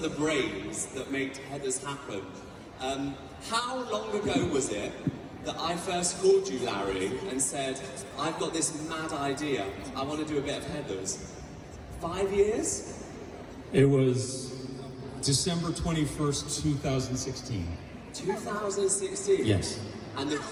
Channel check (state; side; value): identical; both; correlation 1.00